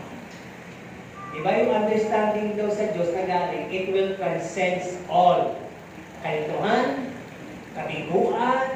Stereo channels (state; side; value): identical; both; correlation 1.00